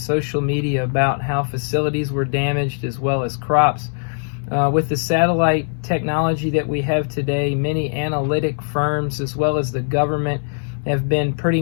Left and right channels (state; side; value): silent; right; 63 dB below the other